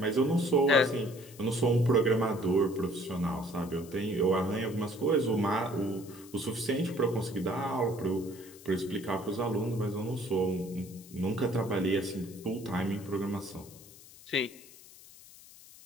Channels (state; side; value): noise; left; hiss, 20 dB below the sound